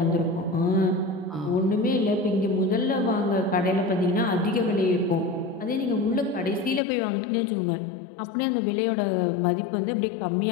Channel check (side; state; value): right; drops out; at 6.8 s